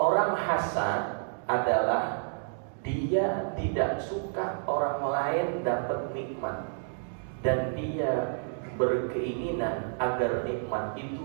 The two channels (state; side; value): silent; left; digital silence